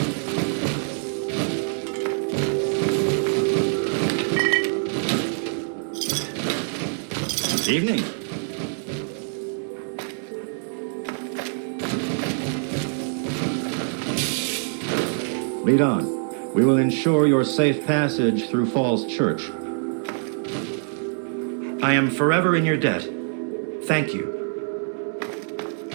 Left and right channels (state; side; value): silent; left; 62 dB below the other